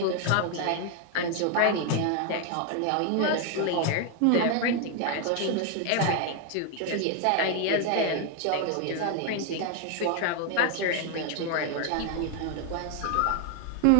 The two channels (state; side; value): different; both; correlation 0.01